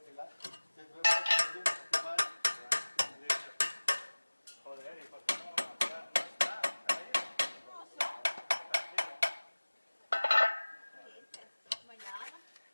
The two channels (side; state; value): both; inverted; correlation -1.00